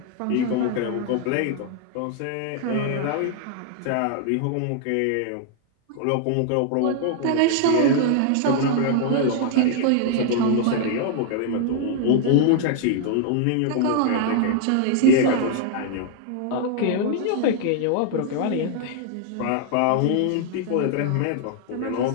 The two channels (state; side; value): different; both; correlation 0.00